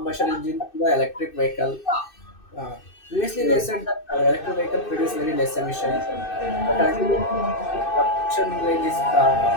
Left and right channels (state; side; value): late; right; 2.6 ms